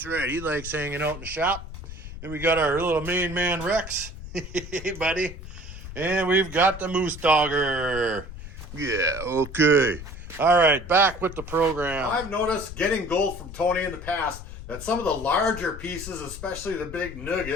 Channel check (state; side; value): noise; left; rumble, 12 dB below the sound